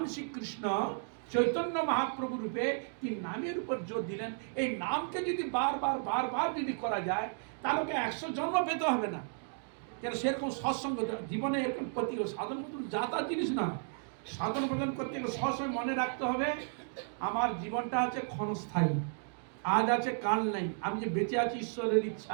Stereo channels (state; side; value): silent; left; digital silence